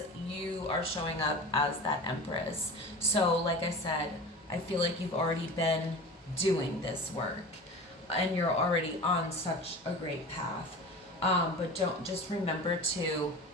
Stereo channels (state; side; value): normal; both; correlation 0.34